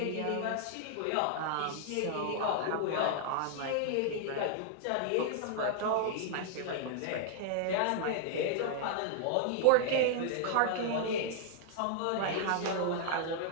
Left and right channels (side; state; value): both; different; correlation -0.01